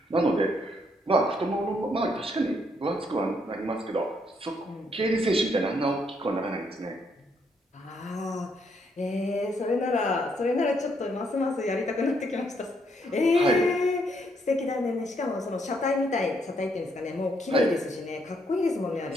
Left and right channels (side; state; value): both; normal; correlation 0.73